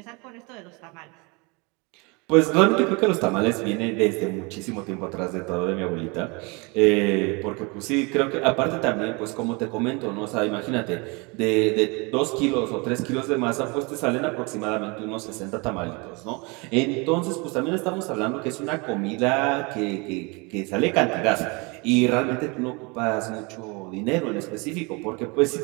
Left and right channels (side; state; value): left; quieter; 28.7 dB